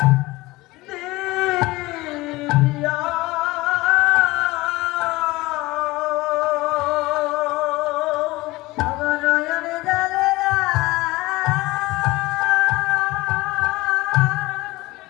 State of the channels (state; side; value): quieter; right; 20.3 dB